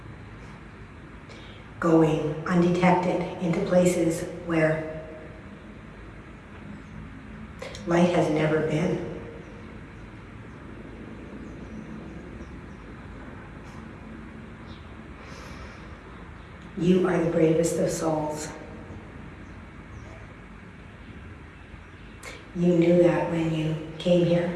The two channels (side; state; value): both; identical; correlation 1.00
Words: going undetected into places where light has never been. You are the bravest of souls. You knew that when you came here.